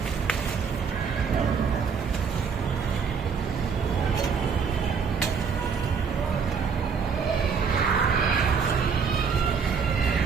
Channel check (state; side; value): quieter; left; 6.0 dB